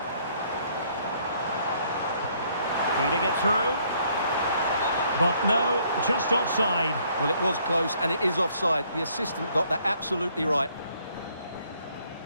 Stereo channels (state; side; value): inverted; both; correlation -0.65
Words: Feeding it through. But no, just offside. Well, it was close, and it is offside. The assistant got that absolutely right.